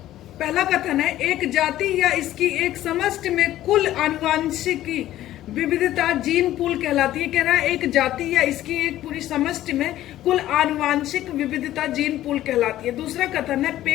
पहला कथन है, एक जाति या इसकी एक समष्टि में कुल आनुवांशिकी विविधता जीन पूल कहलाती है। कह रहा है एक जाति या इसकी एक पूरी समष्टि में कुल आनुवांशिक विविधता जीन पूल कहलाती है। दूसरा कथन है,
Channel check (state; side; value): quieter; right; 13.8 dB